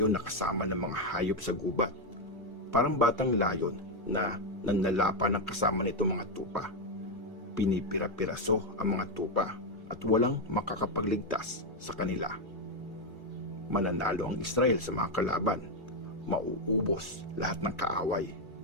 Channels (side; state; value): both; normal; correlation 0.04